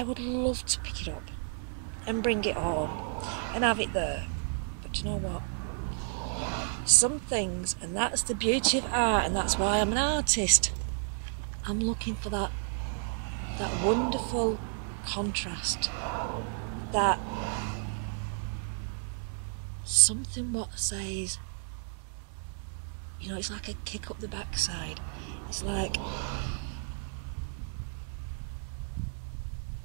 would love to pick it up and bring it home and have it there. But you know what? Some things, and that's the beauty of art, and that's why I'm an artist, I'm looking for that wonderful contrast, that something what says, you know, it's like a kick up the backside. It's like,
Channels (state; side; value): silent; left; digital silence